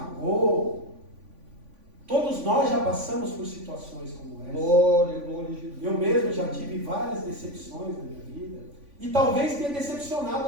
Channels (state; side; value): late; left; 3.5 ms